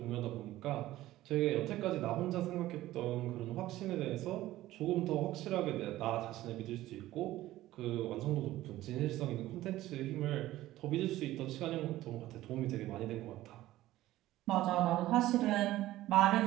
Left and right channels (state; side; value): quieter; left; 15.6 dB